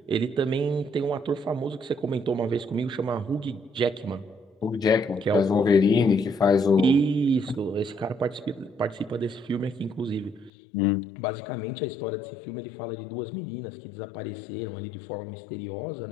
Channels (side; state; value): right; drops out; at 10.5 s